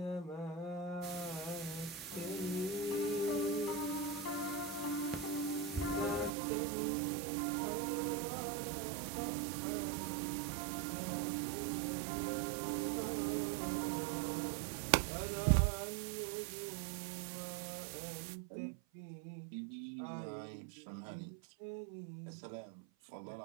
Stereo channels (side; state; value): left; drops out; at 6.3 s